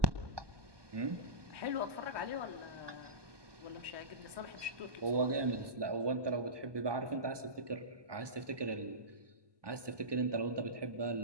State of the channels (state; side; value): late; left; 1.2 ms